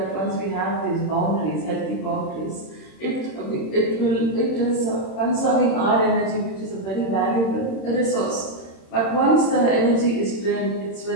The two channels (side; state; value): right; late; 26 ms